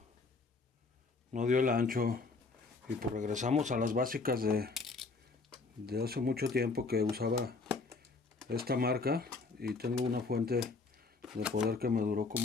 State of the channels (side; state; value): right; quieter; 4.0 dB